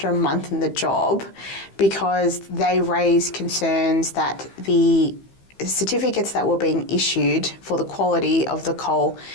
a month in the job because they raised concerns that the certificates that were being issued for the quality of the coal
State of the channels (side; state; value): right; late; 15 ms